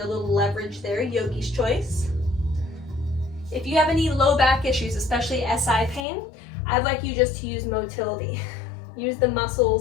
little leverage there, yogi's choice. If you have any low back issues, especially SI pain, I'd like you just to use motility. Use the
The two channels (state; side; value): drops out; right; at 6.1 s